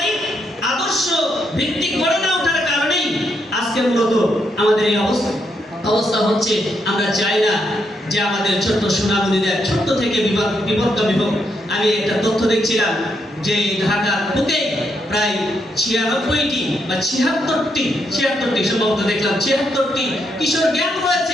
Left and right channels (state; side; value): normal; both; correlation 0.78